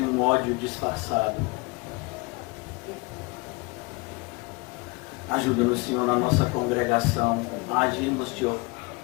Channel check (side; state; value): right; quieter; 26.7 dB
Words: um ódio disfarçado. Ajuda-nos, Senhor, na nossa congregação a agirmos